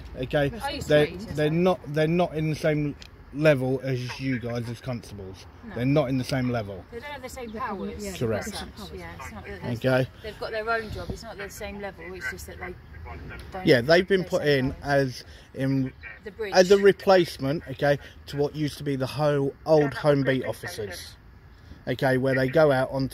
okay, I used to they're be PCSO. they're not in the same level as you guys as constables. No. They're not in the same level. They don't have the same powers. Yeah, Correct. as such. Yeah, it's not that there's- Okay. They've got their own job. It's not the same level. It's just that they don't. Yeah, they've been have put the same in powers. The bridge. as a replacement, okay, to what used to be the whole old home beat officers, okay, where they go out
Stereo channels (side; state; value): both; identical; correlation 1.00